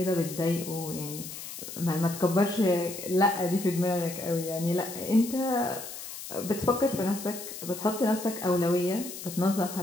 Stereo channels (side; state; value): left; noise; hiss, 10 dB below the sound